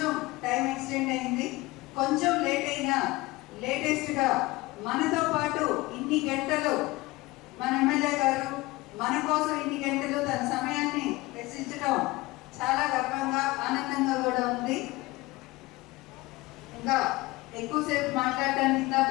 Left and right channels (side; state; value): right; quieter; 21.0 dB